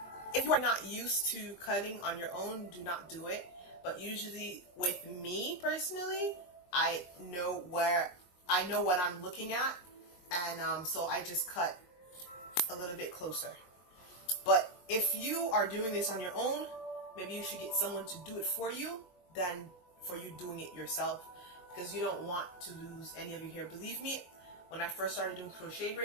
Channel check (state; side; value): late; right; 22 ms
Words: if you are not used to cutting on your own, do not do it. But usually with me personally, I know what I'm looking at, and so I just cut a little bit closer. But if you are doing this on your own, maybe you should get someone to do it for you than for you doing it yourself, because you don't want to lose any of your hair. Believe me, when I first started doing crochet